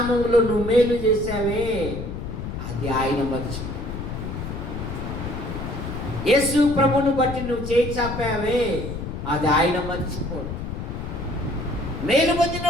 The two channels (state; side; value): noise; left; rumble, 6 dB below the sound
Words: నువ్వు మేలు చేశావే అది ఆయన మర్చిపో. యేసు ప్రభుని బట్టి నువ్వు చేయి చాపావే అది ఆయన మర్చిపోడు. మేలు పొందిన